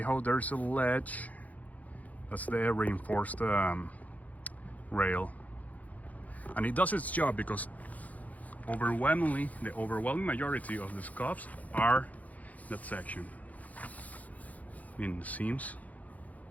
how there's a ledge? That's the reinforced rail. And it does its job because overwhelmingly, the overwhelming majority of the scuffs are that section. I mean, the seams,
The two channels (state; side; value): late; right; 0.075 ms